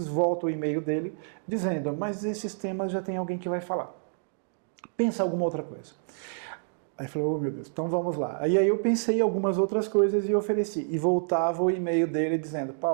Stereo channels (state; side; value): silent; left; digital silence